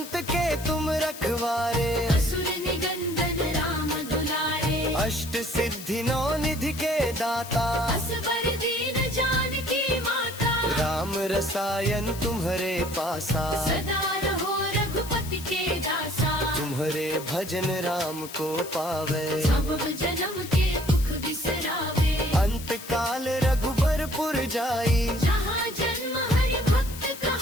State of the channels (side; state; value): left; noise; hiss, 13 dB below the sound